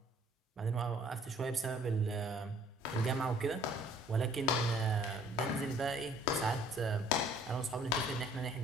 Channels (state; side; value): normal; both; correlation 0.58